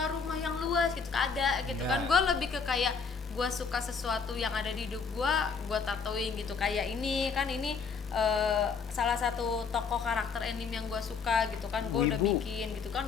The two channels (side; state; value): right; quieter; 5.6 dB